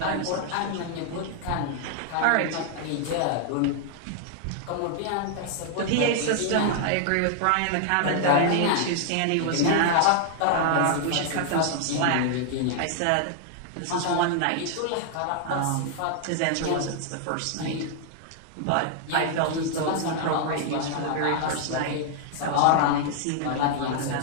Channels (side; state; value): both; different; correlation 0.00